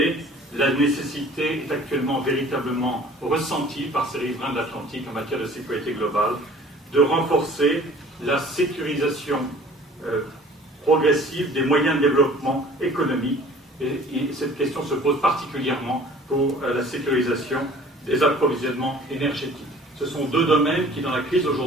la nécessité est actuellement véritablement ressentie par ces riverains de l'Atlantique en matière de sécurité globale de renforcer la sécurisation progressive des moyens de développement économique. Et cette question se pose particulièrement pour la sécurisation des approvisionnements énergétiques. Ce sont deux domaines qui, dans la crise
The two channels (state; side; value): normal; both; correlation 0.49